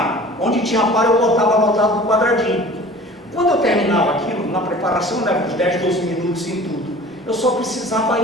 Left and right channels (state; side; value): normal; both; correlation 0.44